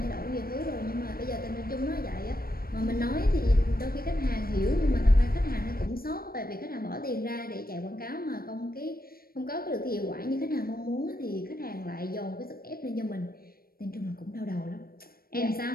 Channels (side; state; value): right; late; 0.43 ms